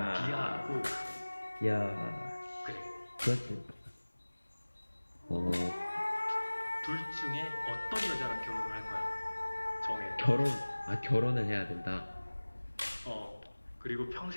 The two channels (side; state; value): both; inverted; correlation -1.00